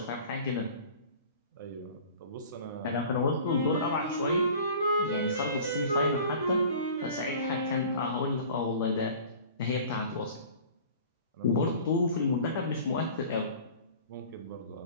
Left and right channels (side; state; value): both; inverted; correlation -0.43